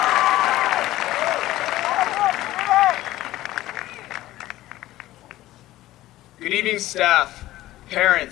Good evening, staff,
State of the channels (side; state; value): right; quieter; 15.7 dB